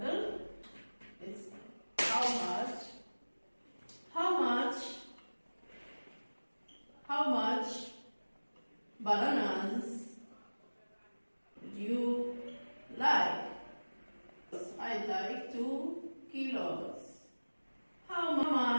It's how much bananas would you like? I'd like 2 kilos. How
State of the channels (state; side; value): inverted; both; correlation -1.00